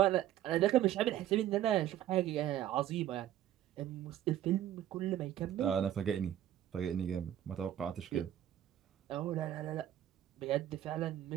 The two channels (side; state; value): left; quieter; 11.9 dB